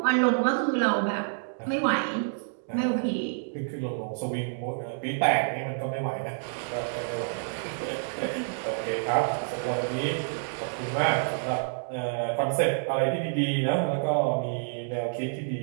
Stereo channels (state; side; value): silent; left; digital silence